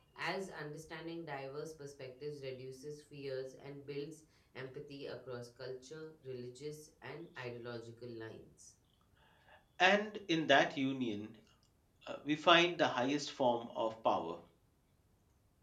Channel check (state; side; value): identical; both; correlation 1.00